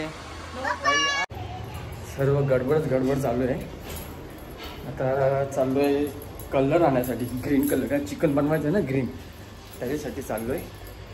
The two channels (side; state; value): both; identical; correlation 1.00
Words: सर्व गडबड चालू आहे. आता चाललो आहे कलर आणण्यासाठी, ग्रीन कलर. काय चिकन बनवायचं आहे ना ग्रीन, त्याच्यासाठी चाललो आहे.